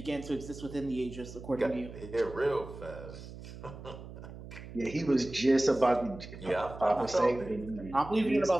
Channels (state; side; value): noise; right; hum, 13 dB below the sound